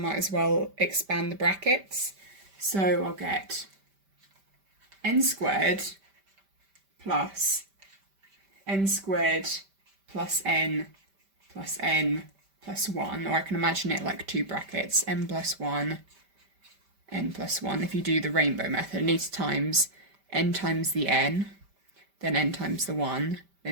as well expand the brackets. So I'll get n squared plus n squared plus n plus 1, or I can imagine it like two brackets, n plus 1, n plus 1. If you do the rainbow method, it needs times n times the n, then n times the 1,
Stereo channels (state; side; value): late; left; 5.1 ms